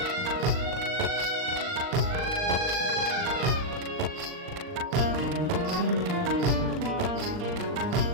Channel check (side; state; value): left; late; 39 ms